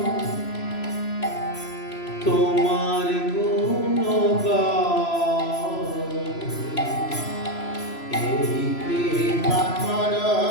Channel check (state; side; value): late; right; 3.0 ms